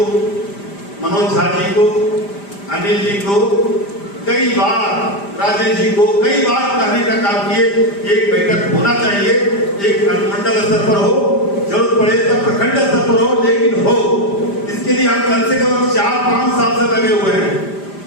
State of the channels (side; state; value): right; late; 5.0 ms